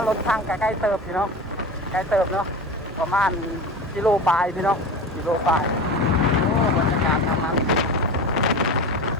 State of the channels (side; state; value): both; normal; correlation 0.30